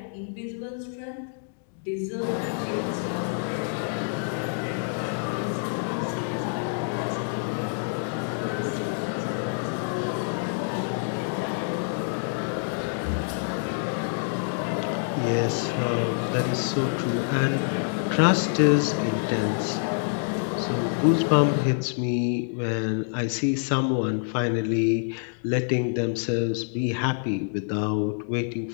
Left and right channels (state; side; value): silent; right; digital silence